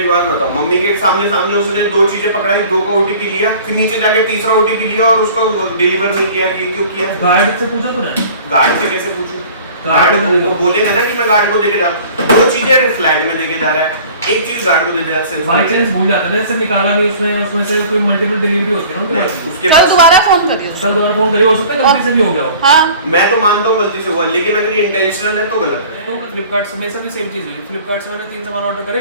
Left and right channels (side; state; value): both; inverted; correlation -0.46